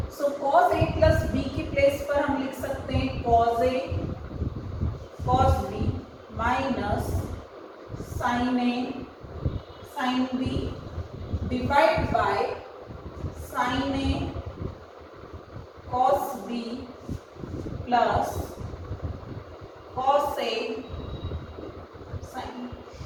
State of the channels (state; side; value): identical; both; correlation 1.00